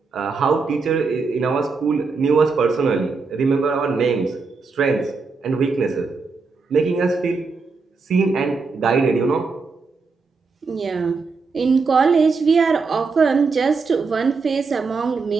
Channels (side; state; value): left; quieter; 4.5 dB